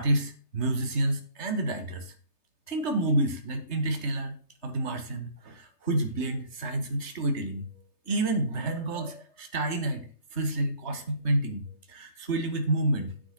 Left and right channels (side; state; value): right; late; 3.3 ms